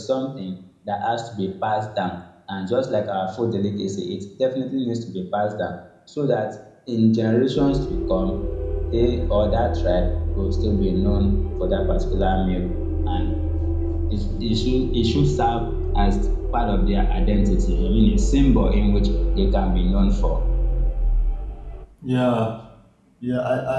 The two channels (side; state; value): both; identical; correlation 1.00